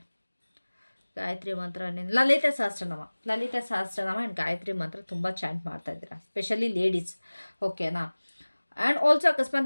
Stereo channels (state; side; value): inverted; both; correlation -1.00